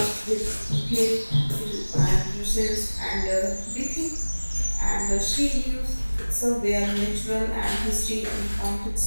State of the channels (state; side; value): inverted; both; correlation -1.00